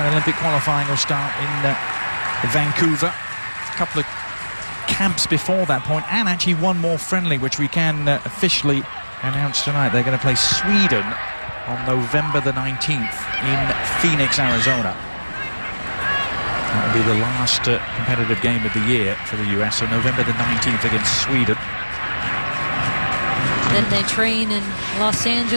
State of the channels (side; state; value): both; inverted; correlation -1.00